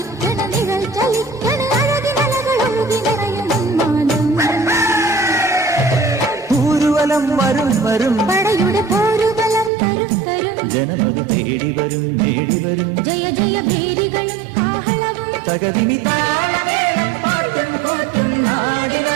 നിഴൽ ചലിക്കണ് അഴകിനലകളൊഴുകി നിറയും ഊരുവലം വരും വരും പടയുടെ പോരുബലം തരും തരും ജനമത് തേടി വരും നേടി വരും ജയ ജയ ഭേരികളും കാഹളവും തകതിനി താളമേളം പാട്ടും കൂട്ടും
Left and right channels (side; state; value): left; drops out; at 9.7 s